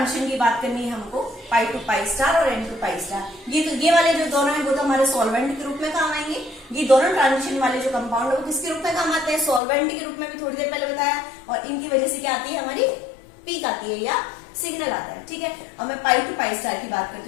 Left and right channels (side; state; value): right; drops out; at 9.6 s